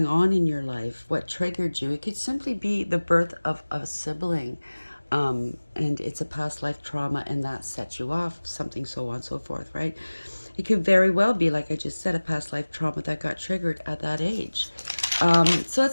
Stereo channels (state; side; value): inverted; both; correlation -1.00